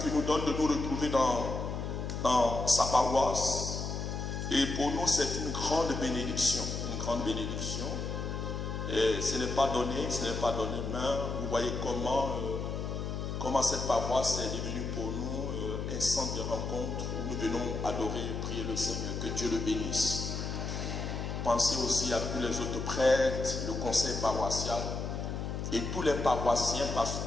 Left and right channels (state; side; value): noise; left; hum, 4 dB below the sound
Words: qu'il nous donne de nous retrouver dans sa paroisse. Et pour nous, c'est une grande bénédiction. Une grande bénédiction. Et ce n'est pas donné, mais vous voyez comment cette paroisse est devenue pour nous un centre de rencontre où nous venons adorer et prier le Seigneur. Que Dieu le bénisse. Pensez aussi à tous les autres prêtres, le conseil paroissial et tous les paroissiens, parce